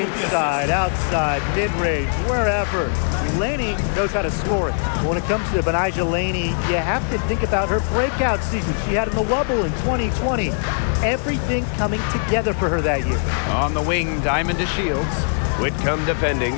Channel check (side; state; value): right; silent; digital silence